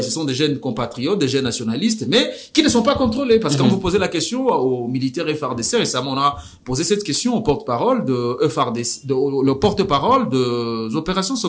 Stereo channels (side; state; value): both; identical; correlation 1.00